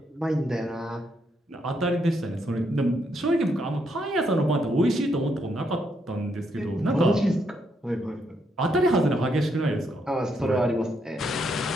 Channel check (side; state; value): both; normal; correlation 0.76